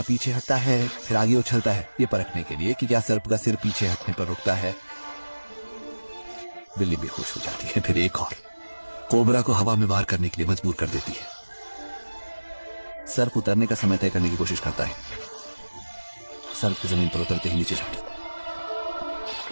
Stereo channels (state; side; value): inverted; both; correlation -1.00